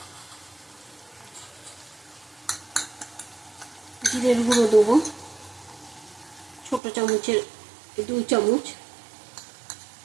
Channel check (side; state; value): left; drops out; at 6.8 s